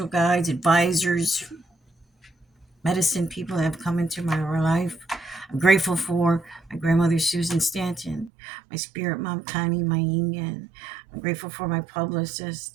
guides, advisors, medicine people that have come into my life. I'm grateful for my grandmother, Susan Stanton, my spirit mom, Connie Mayingen. I'm grateful for my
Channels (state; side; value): drops out; left; at 8.3 s